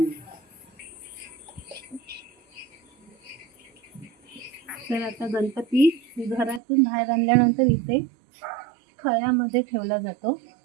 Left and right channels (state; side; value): drops out; left; at 6.6 s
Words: तर आता गणपती घरातून बाहेर आणल्यानंतर इथे खळ्यामध्ये ठेवला जातो.